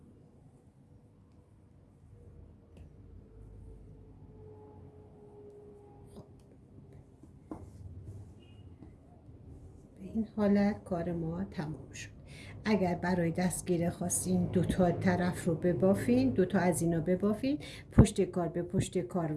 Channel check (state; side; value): identical; both; correlation 1.00